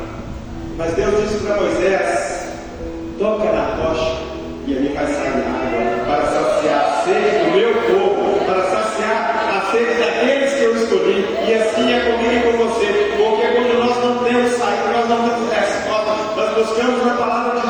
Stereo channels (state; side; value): identical; both; correlation 1.00